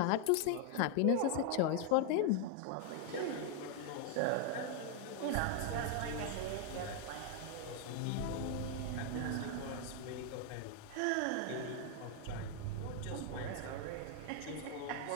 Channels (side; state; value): both; different; correlation 0.00